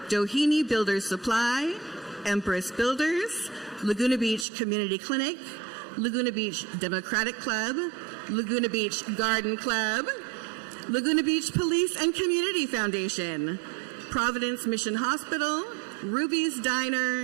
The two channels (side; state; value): left; drops out; at 4.5 s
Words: Doheny Builders Supply, Empress Builders, Laguna Beach Community Clinic, Laguna Beach Democratic Club, Laguna Beach Garden Club, Laguna Beach Police and Community Foundation, Providence Mission Hospital, Ruby's